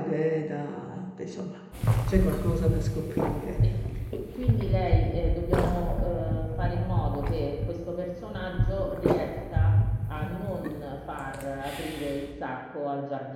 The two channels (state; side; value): identical; both; correlation 1.00